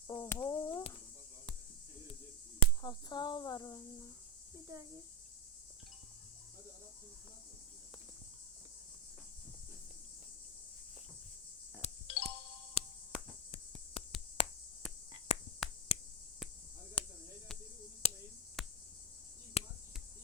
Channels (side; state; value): both; normal; correlation 0.10